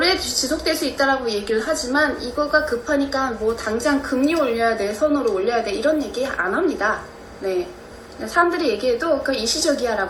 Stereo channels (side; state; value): both; identical; correlation 1.00